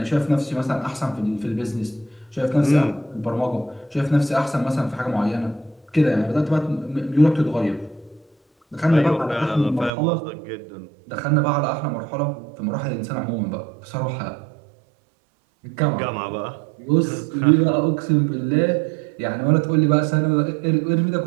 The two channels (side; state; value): left; drops out; at 9.9 s